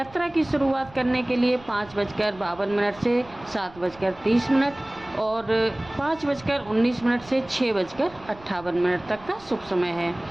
की शुरुआत करने के लिए 5:52 से 7:30 और 5:19 से 6:58 तक का शुभ समय है।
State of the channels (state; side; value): noise; right; rumble, 23 dB below the sound